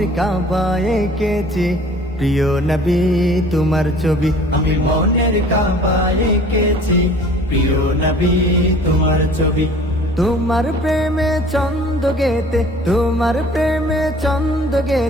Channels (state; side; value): normal; both; correlation 0.49